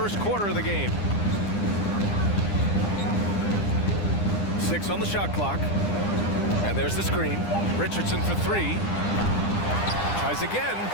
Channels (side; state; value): right; late; 9.9 ms